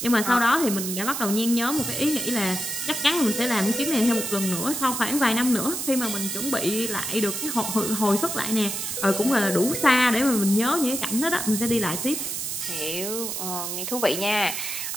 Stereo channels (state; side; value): noise; right; hiss, 4 dB below the sound